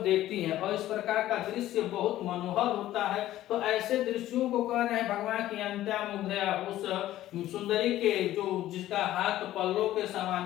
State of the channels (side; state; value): right; quieter; 14.1 dB